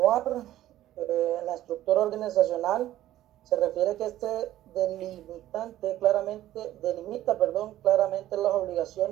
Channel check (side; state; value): left; quieter; 13.8 dB